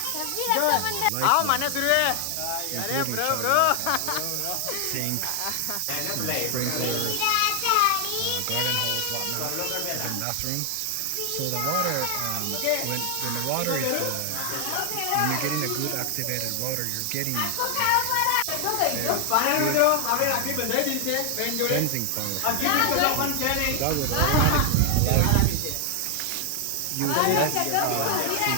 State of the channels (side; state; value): both; different; correlation 0.00